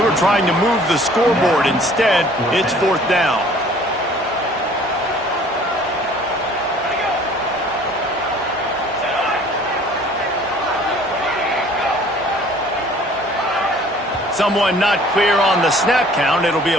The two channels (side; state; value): both; normal; correlation 0.53